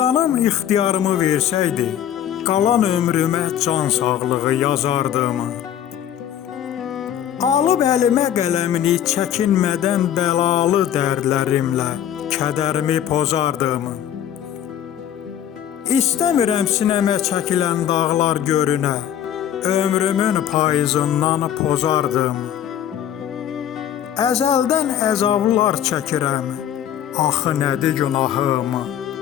ixtiyarımı versəydi, qalan ömrümə can sağlığı yazardım. Alıb əlimə qələmini çəkinmədən bəlalı dərdlərimlə kədərimi pozardım. İstəmirəm sinəmə çəkilən dağlar görünə, ömrümün payızından pozardım. Əzəldən əzablar çəkirəm, axı nədir günahım?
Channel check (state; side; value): quieter; right; 10.3 dB